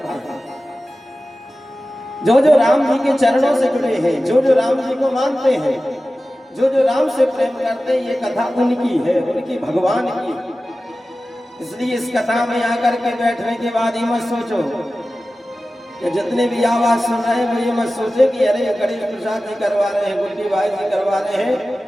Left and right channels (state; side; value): normal; both; correlation 0.95